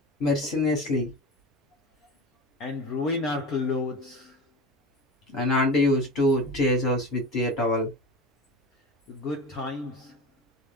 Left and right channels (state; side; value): normal; both; correlation 0.30